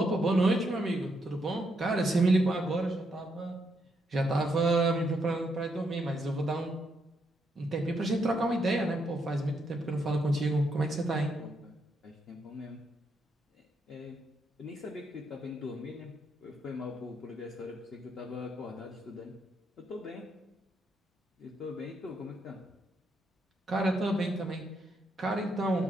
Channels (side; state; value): both; normal; correlation 0.78